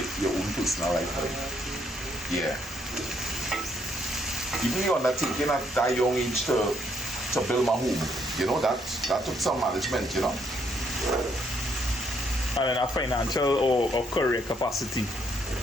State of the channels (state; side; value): normal; both; correlation 0.72